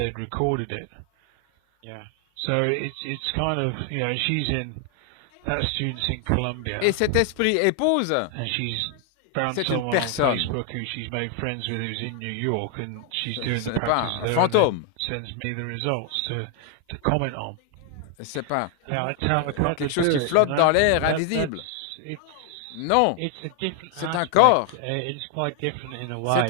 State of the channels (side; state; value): both; different; correlation 0.00